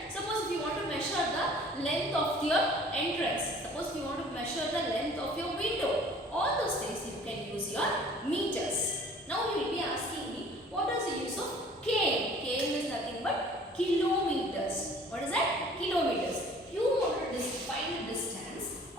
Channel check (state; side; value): normal; both; correlation 0.51